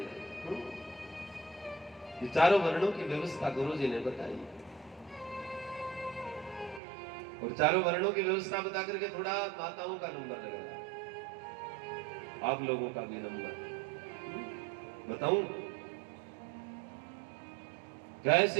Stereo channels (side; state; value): left; drops out; at 6.8 s